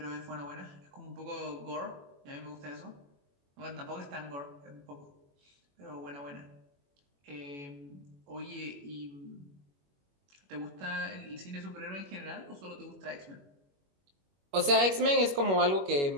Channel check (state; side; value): late; left; 21 ms